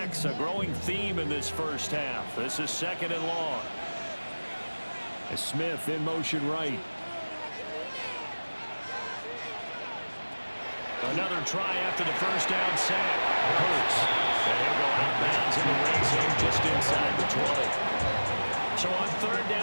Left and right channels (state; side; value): inverted; both; correlation -1.00